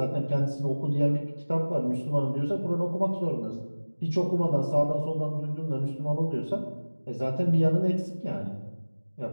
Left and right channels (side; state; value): both; inverted; correlation -1.00